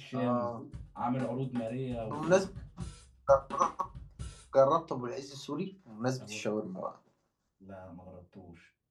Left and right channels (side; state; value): both; identical; correlation 1.00